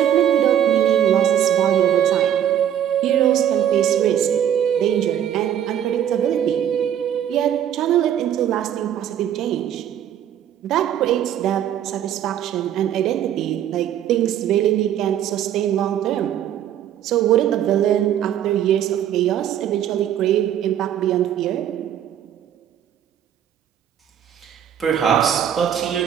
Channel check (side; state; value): left; quieter; 10.2 dB